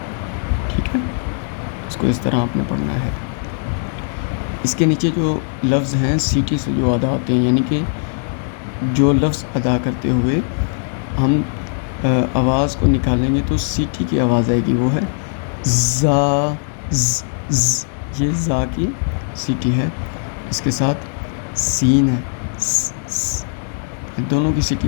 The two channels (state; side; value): silent; right; digital silence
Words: ٹھیک ہے۔ اس کو اس طرح آپ نے پڑھنا ہے۔ اس کے نیچے جو لفظ ہیں سیٹی سے جو ادا ہوتے ہیں، یعنی کہ جو لفظ ادا کرتے ہوئے ہم آواز کو نکالیں گے تو سیٹی کی آواز آئے گی، وہ ہے زا، ز، ز، یہ زا کی سیٹی ہے۔ اس کے ساتھ سین ہے، س، س، دونوں کی سیٹی